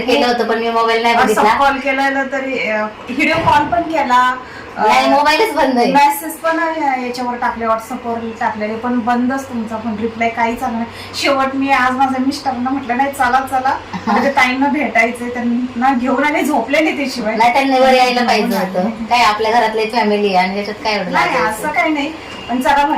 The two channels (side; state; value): both; identical; correlation 1.00